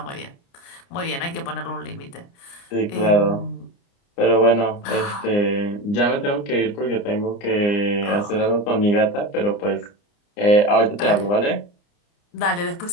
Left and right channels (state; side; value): late; right; 29 ms